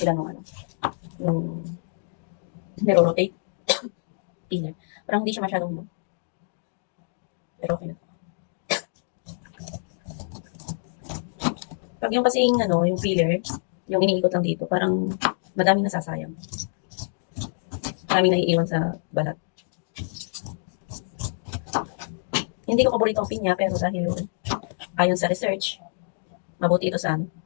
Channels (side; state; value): right; silent; digital silence